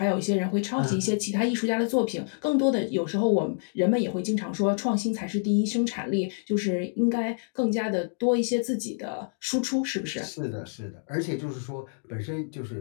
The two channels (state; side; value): silent; right; digital silence